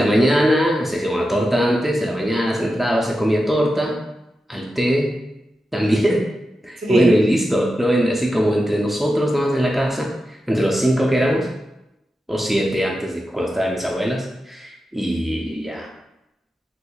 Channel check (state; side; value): normal; both; correlation 0.90